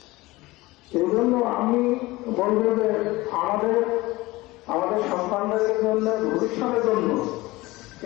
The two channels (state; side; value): quieter; right; 20.2 dB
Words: এই জন্য আমি বলবো যে আমাদের সন্তানদের জন্য, ভবিষ্যতের জন্য